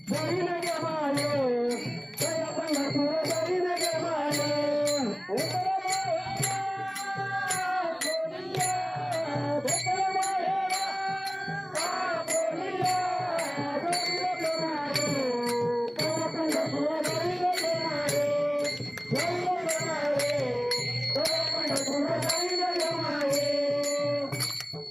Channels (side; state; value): both; identical; correlation 1.00